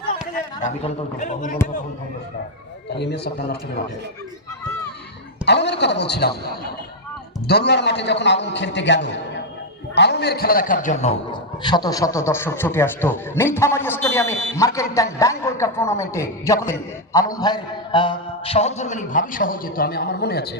আলমের কথা বলছিলাম, দরুয়ার মাঠে যখন আলম খেলতে গেল, আলমের খেলা দেখার জন্য শত শত দর্শক ছুটে আসতো নীলফামারী স্টেডিয়ামে মার্কেন্টাইন ব্যাংক ওয়ার্ল্ড কাপ টুর্নামেন্টে। যখন আলম ভাইয়ের সহধর্মিনী ভাবি সহ যেত, আমার মনে আছে।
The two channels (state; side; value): normal; both; correlation 0.00